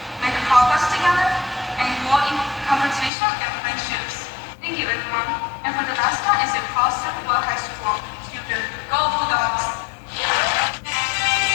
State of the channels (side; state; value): right; drops out; at 3.1 s